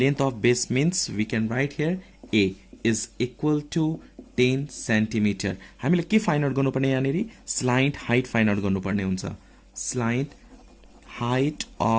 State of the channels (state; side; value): identical; both; correlation 1.00